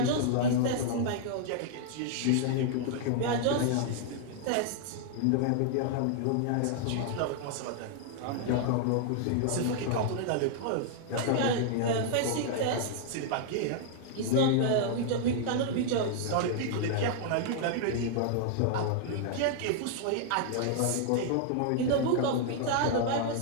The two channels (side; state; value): both; different; correlation -0.01